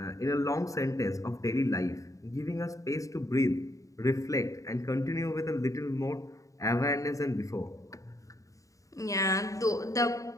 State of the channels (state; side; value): late; right; 0.16 ms